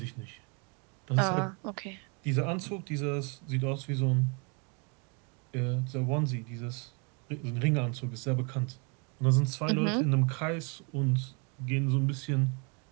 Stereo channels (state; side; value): quieter; left; 34.0 dB